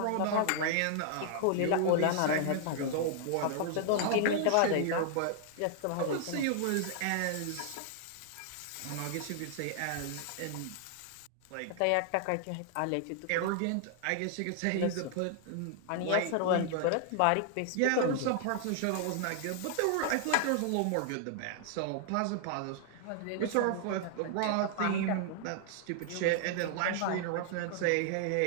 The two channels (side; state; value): both; different; correlation 0.00